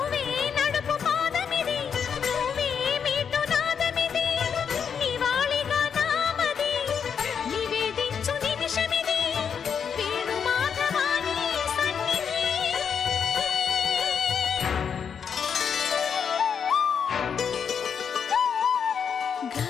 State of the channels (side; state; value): right; quieter; 7.1 dB